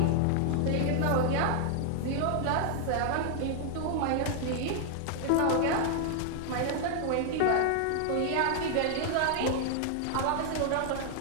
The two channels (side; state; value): both; different; correlation 0.00